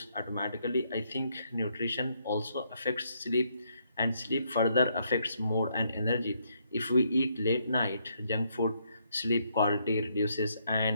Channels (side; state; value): both; inverted; correlation -0.74